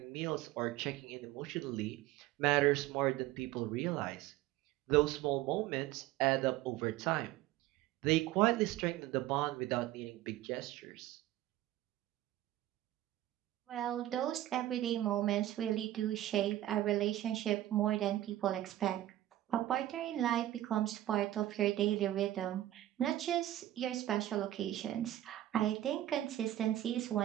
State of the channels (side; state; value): left; quieter; 14.2 dB